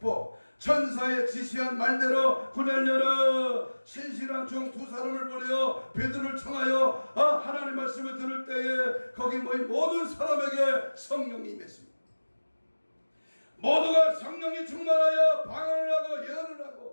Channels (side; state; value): both; inverted; correlation -1.00